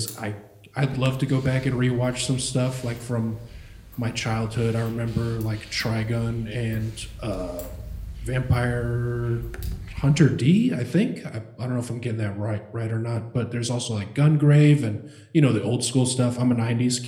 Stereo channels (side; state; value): both; identical; correlation 1.00